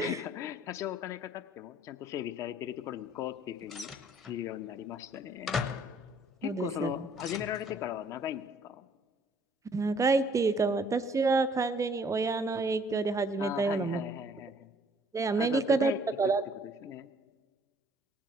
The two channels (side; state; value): both; normal; correlation 0.60